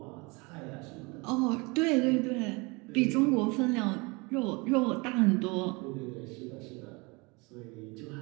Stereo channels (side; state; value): left; quieter; 27.2 dB